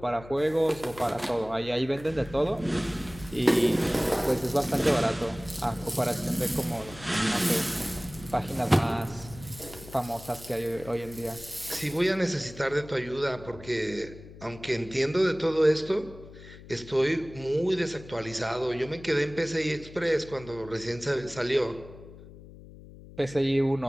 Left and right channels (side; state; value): left; noise; hum, 18 dB below the sound